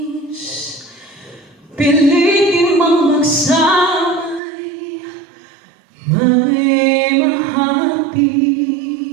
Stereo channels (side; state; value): left; drops out; at 4.4 s